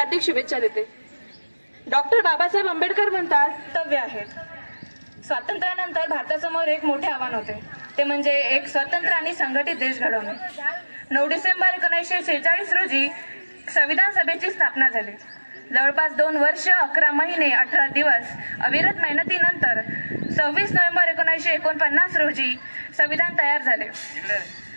शुभेच्छा देते. डॉक्टर बाबासाहेब आंबेडकर म्हणतात, कर्तव्य आहेत. स्वातंत्र्यानंतर भारतासमोर एक मोठे आव्हान होते, ते म्हणजे एक स्वतंत्र आणि संघटित देश घडवणे. 9 डिसेंबर 1946 रोजी संविधान सभेची स्थापना झाली. जवळपास 2 वर्ष 11 महिने 18 दिवस अविरत मेहनतीनंतर 26 नोव्हेंबर 1949 रोजी संविधान तयार झाले.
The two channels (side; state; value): both; inverted; correlation -1.00